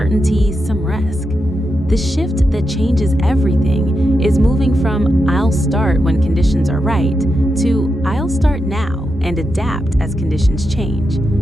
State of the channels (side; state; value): both; normal; correlation 0.87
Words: some risk. The shift that changes everything is moving from "I'll start when conditions are right" to "I'll start now and adapt as conditions change."